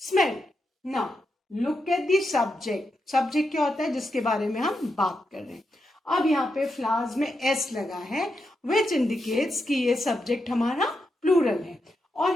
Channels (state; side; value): normal; both; correlation 0.85